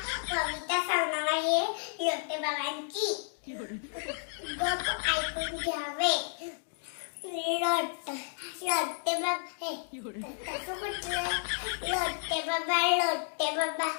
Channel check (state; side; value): silent; right; digital silence